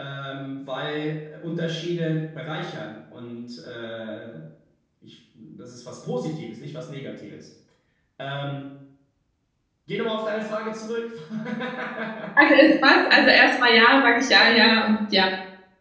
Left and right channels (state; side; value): identical; both; correlation 1.00